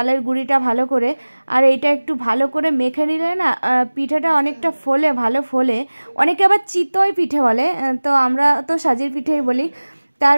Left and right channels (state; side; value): inverted; both; correlation -1.00